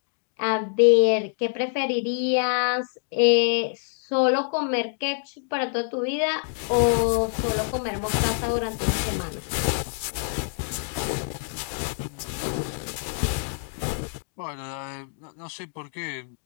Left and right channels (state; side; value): silent; right; digital silence